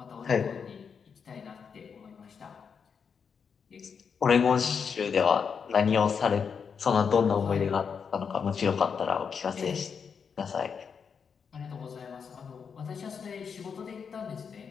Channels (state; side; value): quieter; right; 6.4 dB